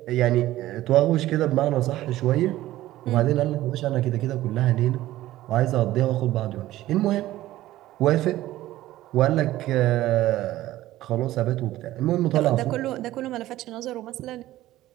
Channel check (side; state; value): left; quieter; 15.4 dB